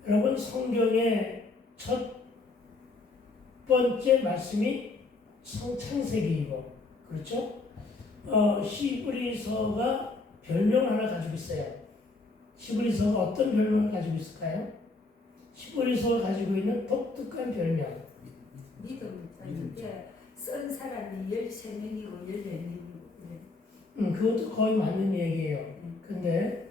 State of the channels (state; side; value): quieter; right; 3.4 dB